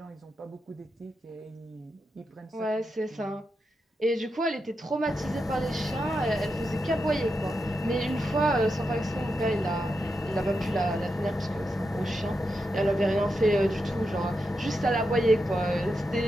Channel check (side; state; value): both; normal; correlation 0.86